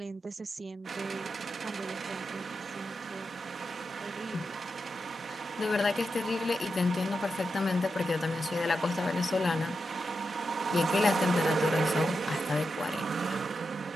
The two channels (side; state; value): both; normal; correlation 0.87